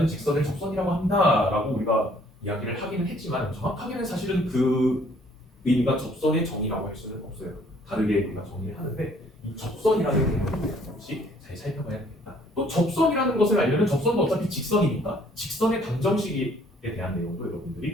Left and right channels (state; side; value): normal; both; correlation 0.60